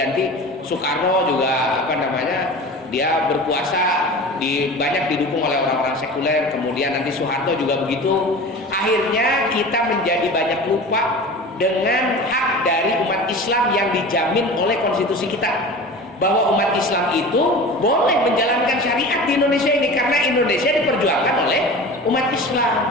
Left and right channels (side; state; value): both; normal; correlation 0.35